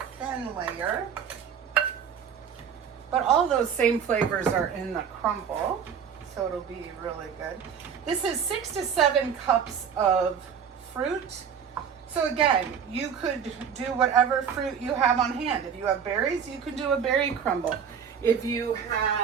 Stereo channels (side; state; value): left; quieter; 7.5 dB